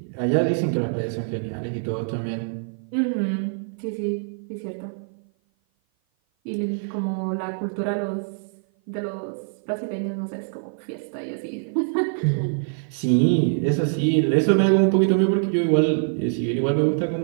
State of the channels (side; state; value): left; silent; 55 dB below the other